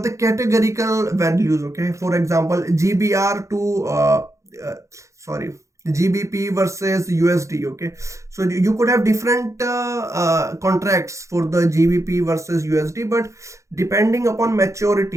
the categorical values. Okay, for example, GBR to sorry, GBP versus USD. Okay, so you could have different contracts for the GBP versus USD, but depending upon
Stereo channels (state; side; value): late; left; 0.15 ms